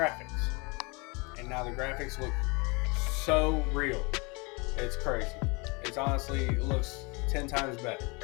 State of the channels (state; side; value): quieter; right; 28.8 dB